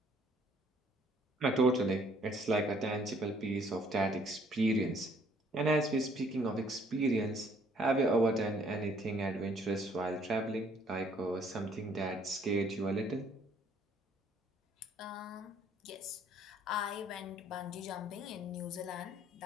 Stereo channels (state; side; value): normal; both; correlation 0.62